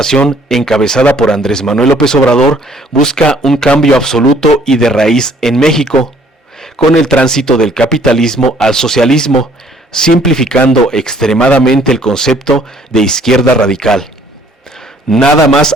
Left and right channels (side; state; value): both; normal; correlation 0.60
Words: encabezada por Andrés Manuel López Obrador busca un cambio absoluto y de raíz en México, con el tránsito del capitalismo al socialismo, simplificando extremadamente el concepto de izquierda radical. Nada más